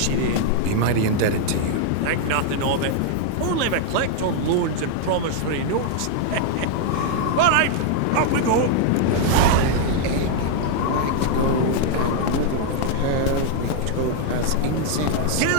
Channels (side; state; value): both; different; correlation 0.00